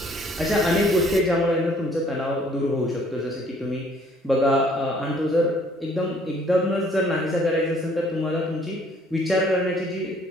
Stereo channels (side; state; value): both; normal; correlation 0.60